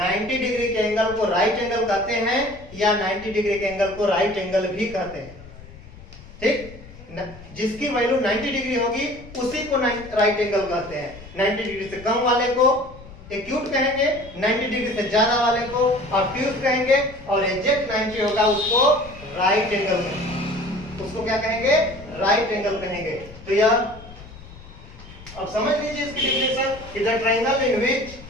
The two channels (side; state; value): left; noise; rumble, 18 dB below the sound